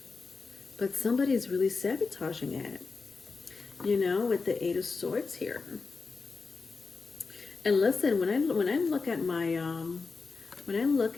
but somebody's really sabotaging it, with the Eight of Swords here. And listen, when I look at my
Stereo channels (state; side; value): quieter; right; 4.4 dB